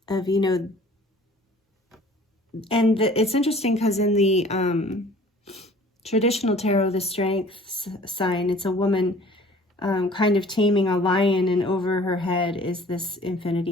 of, and it's interesting because in the traditional tarot, the strength sign, it's a woman kind of taming a lion, and over her head is this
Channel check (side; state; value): both; normal; correlation 0.50